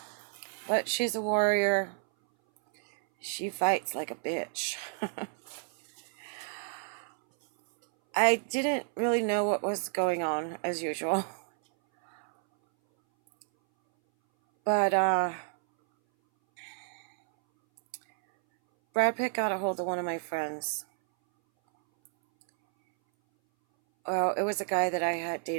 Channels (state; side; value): silent; left; 58 dB below the other